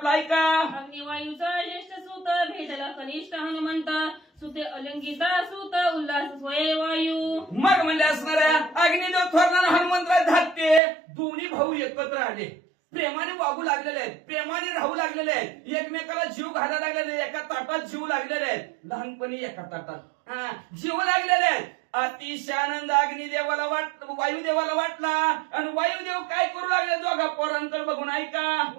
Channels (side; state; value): left; drops out; at 10.8 s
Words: ऐका. अग्निवायूचा ज्येष्ठ सूत भेटला कनिष्ठ हनुमंत सुते अलंकिता सूत उल्हास स्वये वायू. मग म्हणले असणाऱ्या अग्निदेव थोरला हनुमंतराय धाकटे दोन्ही भाऊ एकत्र आले. प्रेमाने वागू लागलेले आहेत, प्रेमाने राहू लागलेले आहेत, एकमेकाला जीव घालायला लागलेले, एका ताटात जीव लागलेले आहेत. लहानपणी एका ताटात जीव लागलेले आहेत. अतिशय आनंद अग्निदेवाला वायुदेवाला वाटला. आणि वायुदेव काय करू लागले दोघा पोरांकडे बघून ऐका.